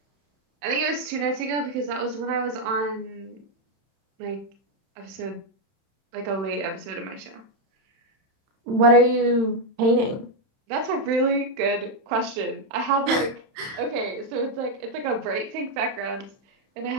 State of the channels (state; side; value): late; left; 31 ms